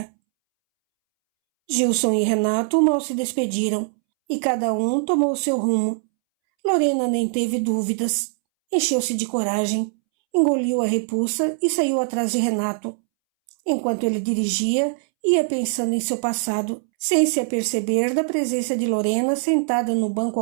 Gilson e Renato mal se despediram, e cada um tomou seu rumo. Lorena nem teve dúvidas. Encheu-se de coragem, engoliu a repulsa e saiu atrás de Renato. Enquanto ele dirigia, ia pensando em seu passado, sem se aperceber da presença de Lorena sentada no banco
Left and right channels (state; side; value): silent; left; 64 dB below the other